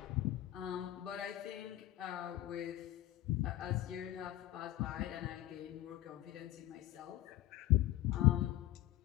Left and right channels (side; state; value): right; quieter; 14.6 dB